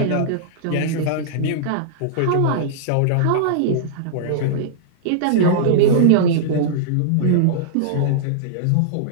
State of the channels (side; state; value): both; different; correlation -0.02